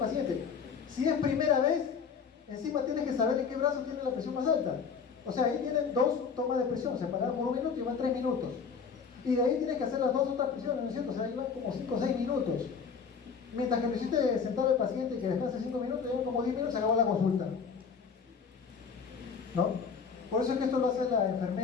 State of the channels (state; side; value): quieter; right; 6.0 dB